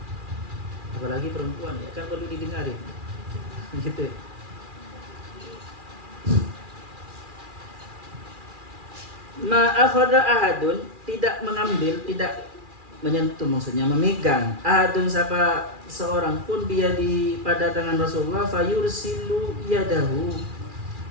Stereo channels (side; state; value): left; late; 2.4 ms